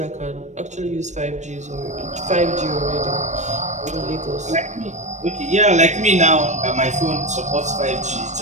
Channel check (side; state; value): left; late; 0.34 ms